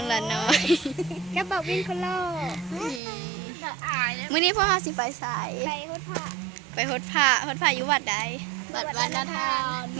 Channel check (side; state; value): left; drops out; at 3.0 s